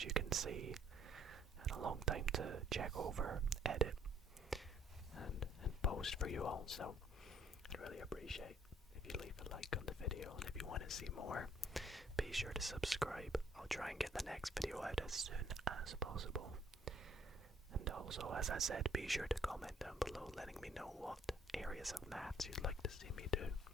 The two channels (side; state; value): both; normal; correlation 0.63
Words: you can see, and a long time to check over, edit, and post for you all. So I'd really appreciate if you leave a like on the video, and if you want to see more, be sure to subscribe. I'll try and get the next video out as soon as possible. And also, as I said, be sure to comment down below letting me know what areas of maths you'd like to see me do